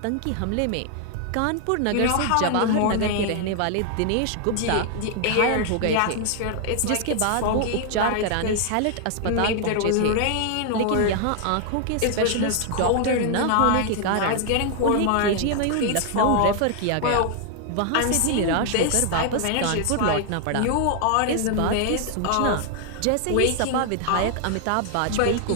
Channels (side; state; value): both; different; correlation 0.00